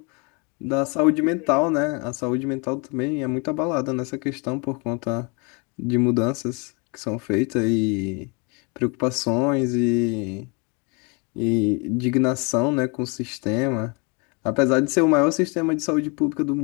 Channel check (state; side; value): quieter; right; 31.8 dB